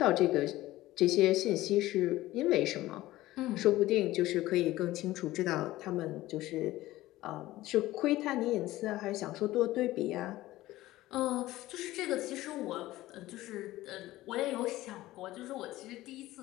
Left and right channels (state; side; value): quieter; right; 16.7 dB